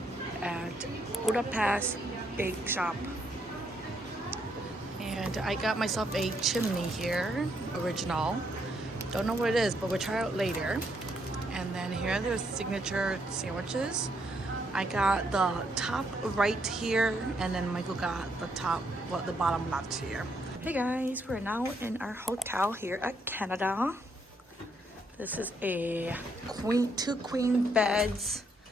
At Budapest Bake Shop, and I got myself a chimney here, original. Don't know what it is, but we'll try it out later. And then here are their signature sandwiches. I got the top right here, and then Michael got the the bottom left here. Hey guys, we're now in our hotel here at Canada. This is a two queen beds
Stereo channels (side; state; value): both; normal; correlation 0.74